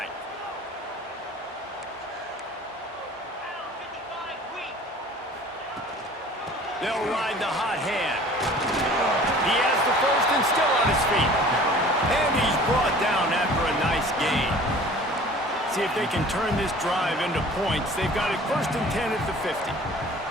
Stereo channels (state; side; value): normal; both; correlation 0.47